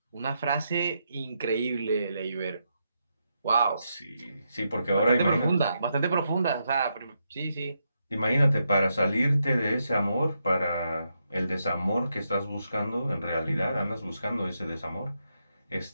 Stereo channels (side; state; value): both; inverted; correlation -0.82